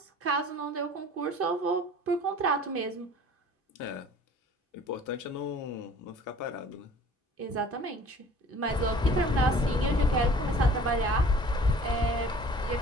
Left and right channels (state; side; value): normal; both; correlation 0.49